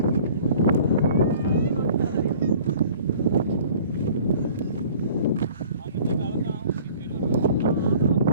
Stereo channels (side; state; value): both; inverted; correlation -0.49